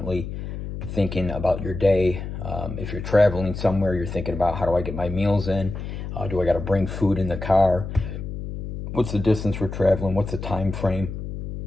thinking about your day. If you're traveling somewhere, you're thinking about, how do I get my meals in? Do I got to bring food in the car? What's the distance we're traveling? What's the time frame?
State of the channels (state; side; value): noise; left; hum, 7 dB below the sound